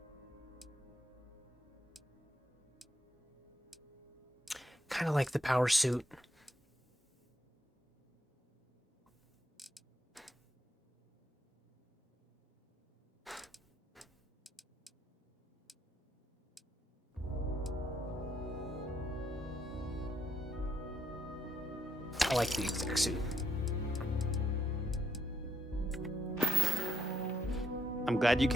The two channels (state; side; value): normal; both; correlation 0.76